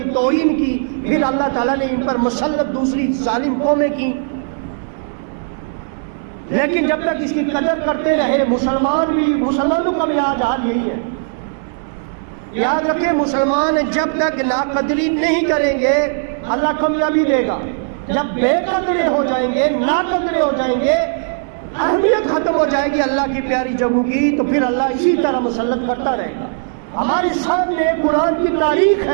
توہین کی، پھر اللہ تعالیٰ نے ان پر مسلط دوسری ظالم قومیں کی۔ لیکن جب تک اس کی قدر کرتے رہے مسلمانوں کا بھی آج حال یہی ہے۔ یاد رکھیں مسلمان جب تک ناقدری نہیں کریں گے اللہ کامیابی دے گا، جب بے قدرے ہو جائیں گے، ناقدرے ہو جائیں گے، اہمیت ختم ہو جائے گی اللہ کی پیاری جگہوں کی، تو پھر اللہ اسی طرح مسلط کرتا رہے گا۔ ہمارے سامنے قرآن کی تاریخ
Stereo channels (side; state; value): left; silent; digital silence